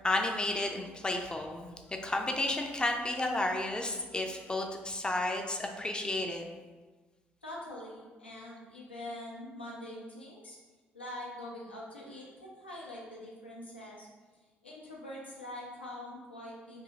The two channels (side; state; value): both; normal; correlation 0.68